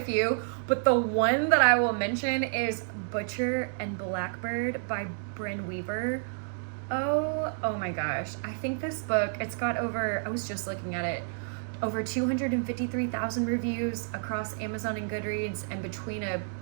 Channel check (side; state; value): left; silent; digital silence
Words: few, but the one that I will mention is Butcher and Blackbird by Bryn Weaver. Oh my gosh. I think this book, it's got over, I was just looking at it, over 253,000 reviews across Amazon and Goodreads, and between a